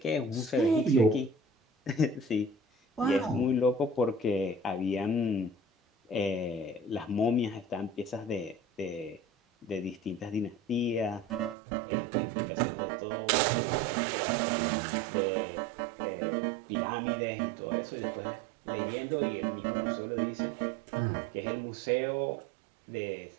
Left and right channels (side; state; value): left; drops out; at 11.6 s